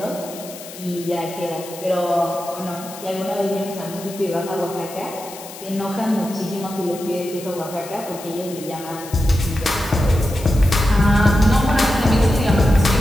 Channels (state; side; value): noise; left; hiss, 15 dB below the sound